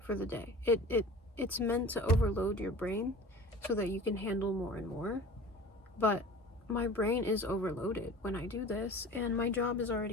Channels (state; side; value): normal; both; correlation 0.40